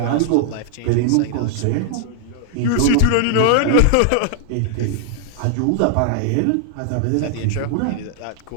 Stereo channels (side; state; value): both; different; correlation 0.00